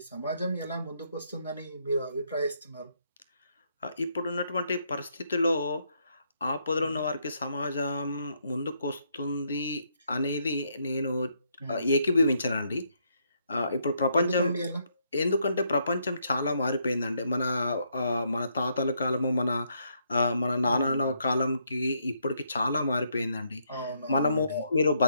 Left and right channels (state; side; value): inverted; both; correlation -0.75